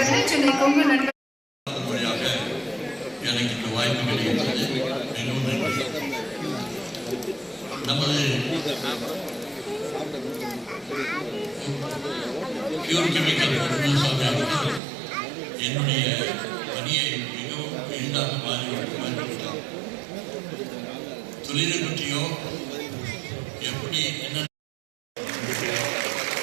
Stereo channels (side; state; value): left; drops out; at 14.8 s